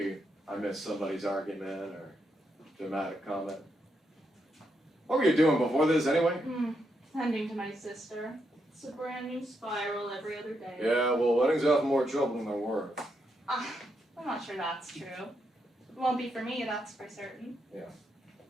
I missed somebody's argument or dramatic comment. What were you doing before this anyway? Tending to my sister. It's a brand new spiral every other day. Yeah, well, weddings are often more trouble than they're worth. I'm not sure that's true. It won't be for me, that's for certain. Yeah.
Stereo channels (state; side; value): normal; both; correlation 0.81